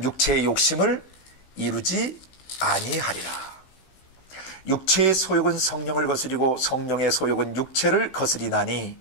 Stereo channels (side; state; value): right; late; 16 ms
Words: 육체의 욕심을 이루지 아니하리라. 육체의 소욕은 성령을 거스리고 성령의 소욕은 육체를 거스리나니